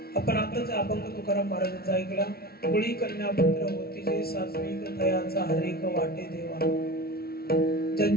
आपण आताच अभंग तुकाराम महाराजांचा ऐकला। कुळी कन्या पुत्र होती जे सात्विक दयाचा हरेक वाटे देवा।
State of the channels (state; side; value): late; right; 0.44 ms